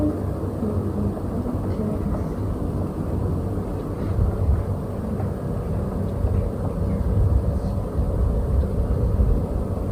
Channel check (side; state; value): both; identical; correlation 1.00